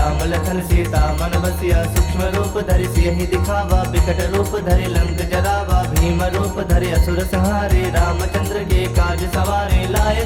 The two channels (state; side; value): identical; both; correlation 1.00